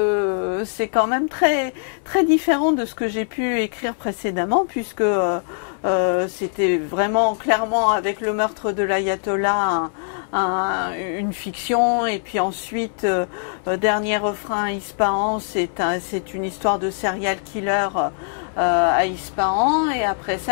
c'est quand même très, très différent de ce que j'ai pu écrire précédemment, puisque c'était vraiment clairement avec le meurtre de l'ayatollah une fiction, et puis ensuite Dernier refrain à Ispahan, c'est une histoire de serial killer à Ispahan, et après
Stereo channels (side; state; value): right; silent; 60 dB below the other